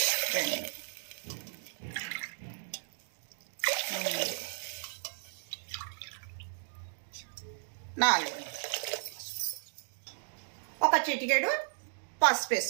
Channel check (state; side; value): silent; left; digital silence